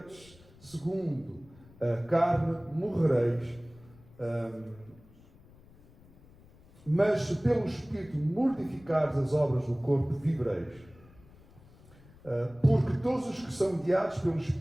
segundo a carne, morrereis. Mas se pelo Espírito mortificares as obras do corpo, vivereis. Porque todos os que são guiados pelo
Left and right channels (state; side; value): noise; left; rumble, 25 dB below the sound